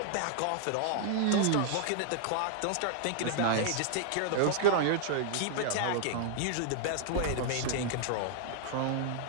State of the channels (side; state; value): both; different; correlation -0.01